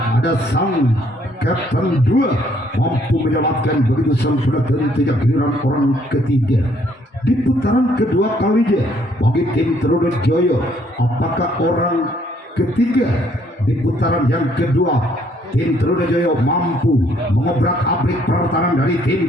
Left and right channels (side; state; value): both; normal; correlation 0.66